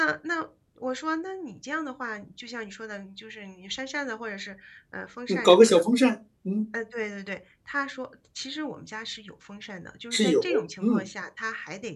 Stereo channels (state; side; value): identical; both; correlation 1.00